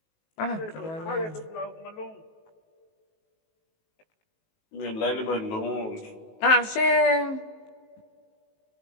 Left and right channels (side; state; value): right; late; 19 ms